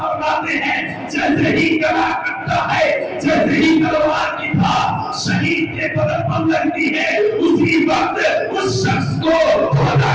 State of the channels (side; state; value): both; identical; correlation 1.00